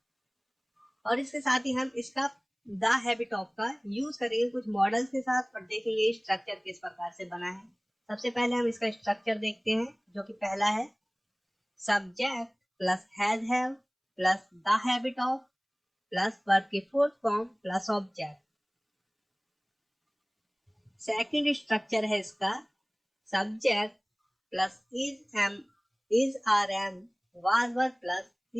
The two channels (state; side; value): identical; both; correlation 1.00